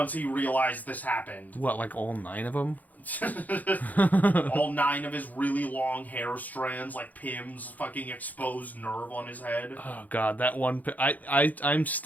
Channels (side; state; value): right; late; 0.080 ms